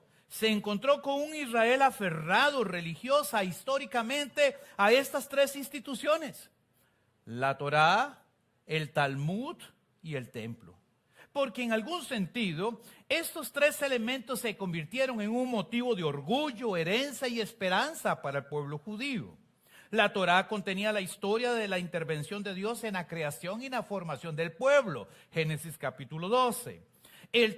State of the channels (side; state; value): both; identical; correlation 1.00